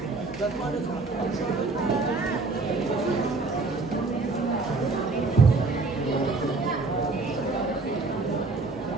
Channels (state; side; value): quieter; left; 3.7 dB